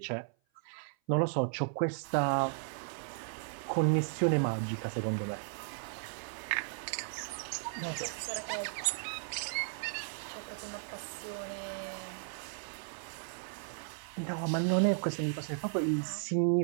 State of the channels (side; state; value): left; silent; 54 dB below the other